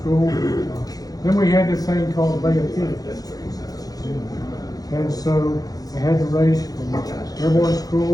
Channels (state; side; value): late; right; 0.18 ms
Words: Then we had this thing called the Bay of Pigs. And so I had to race from airborne